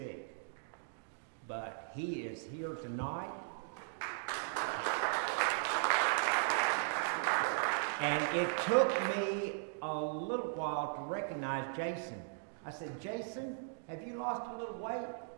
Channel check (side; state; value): left; silent; digital silence